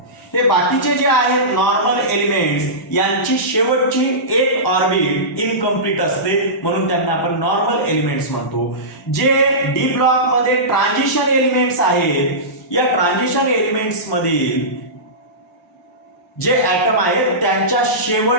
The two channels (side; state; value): both; normal; correlation -0.18